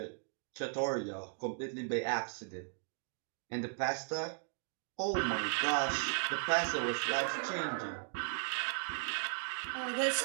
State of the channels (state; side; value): silent; left; digital silence